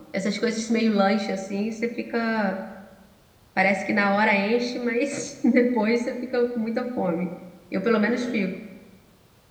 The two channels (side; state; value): both; identical; correlation 1.00